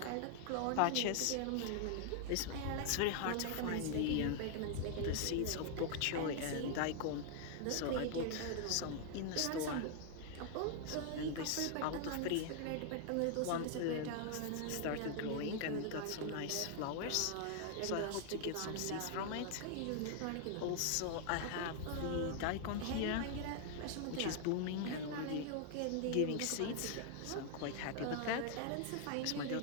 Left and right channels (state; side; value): different; both; correlation 0.00